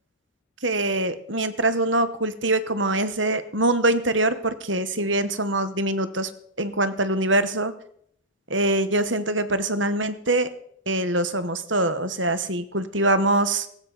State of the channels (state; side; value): normal; both; correlation -0.18